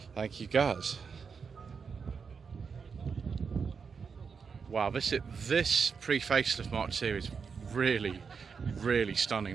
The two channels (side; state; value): left; quieter; 5.7 dB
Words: Thank you, Gaz. Wow, this pre-facelift Mark II is really, really